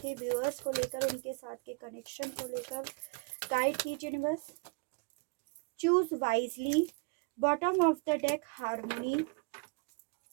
व्यूअर्स को लेकर, उनके साथ के कनेक्शन को लेकर। गाइड कीजिए universe. Choose wisely, bottom of the deck harmony.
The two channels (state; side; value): quieter; left; 32.0 dB